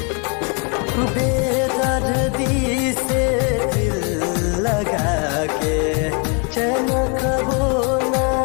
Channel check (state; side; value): quieter; right; 36.1 dB